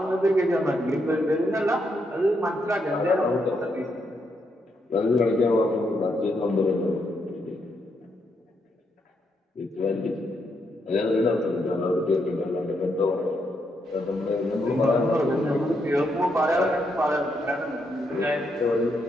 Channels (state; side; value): normal; both; correlation 0.79